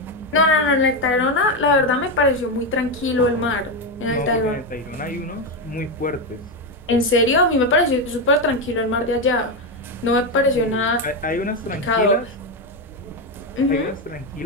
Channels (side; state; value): both; normal; correlation 0.09